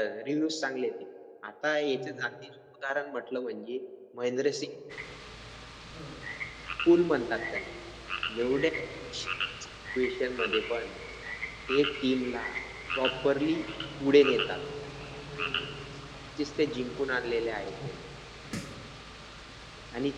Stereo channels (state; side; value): identical; both; correlation 1.00